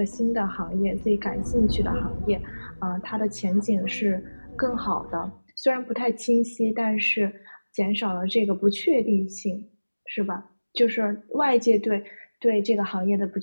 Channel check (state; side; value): inverted; both; correlation -1.00